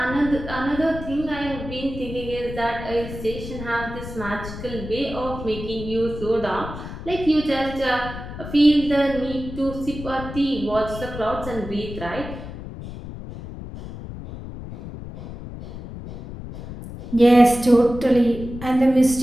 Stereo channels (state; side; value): noise; left; rumble, 11 dB below the sound